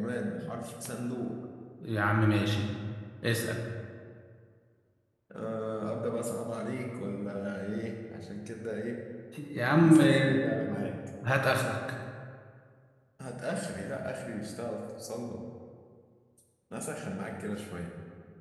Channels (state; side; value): identical; both; correlation 1.00